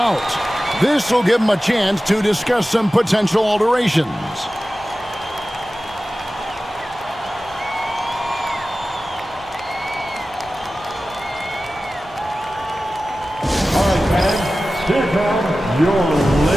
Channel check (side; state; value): both; normal; correlation 0.95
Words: This will give him a chance to discuss some potential alterations. All right, fans, here come your